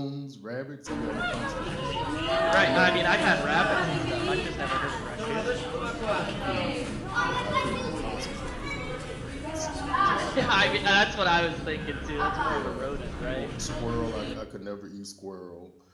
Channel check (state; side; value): identical; both; correlation 1.00